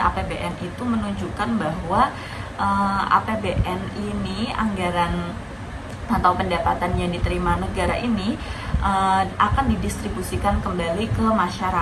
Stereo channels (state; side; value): identical; both; correlation 1.00